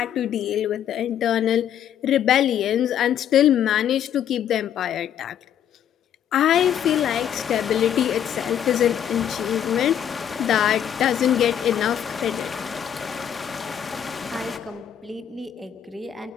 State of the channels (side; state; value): right; quieter; 9.6 dB